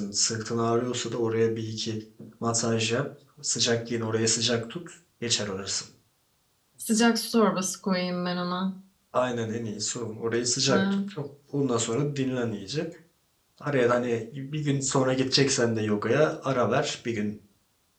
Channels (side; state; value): both; identical; correlation 1.00